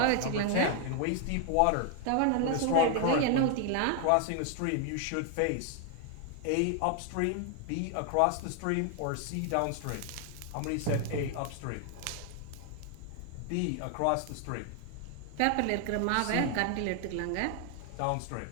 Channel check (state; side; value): different; both; correlation 0.00